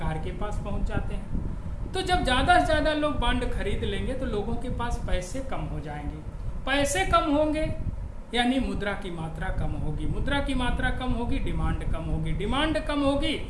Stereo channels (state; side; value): identical; both; correlation 1.00